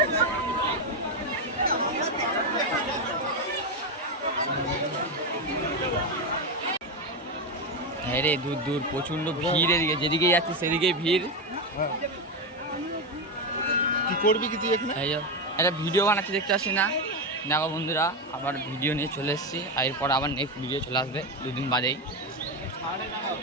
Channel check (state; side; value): normal; both; correlation 0.11